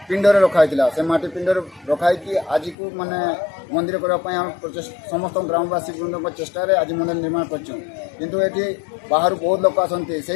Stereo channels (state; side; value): drops out; right; at 2.8 s